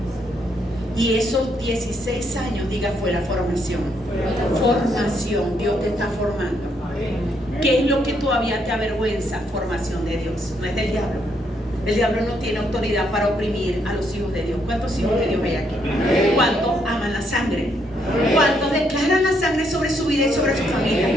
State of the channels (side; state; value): both; normal; correlation 0.74